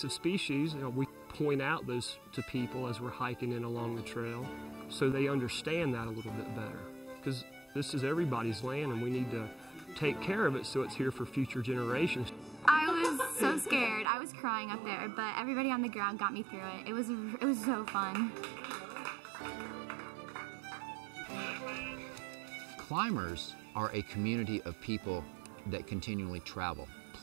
species, we point out those to people as we're hiking in along the trail so they understand that a little bit better. Because this is everybody's land and we need to take care of it so it's here for future generations. I was so scared. I was crying up there, but everybody on the ground got me through it. It was so fun. Climbers are a community of people that continually travel.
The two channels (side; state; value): left; drops out; at 14.1 s